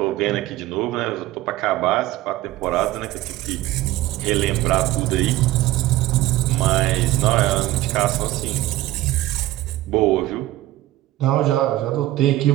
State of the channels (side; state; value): left; quieter; 16.1 dB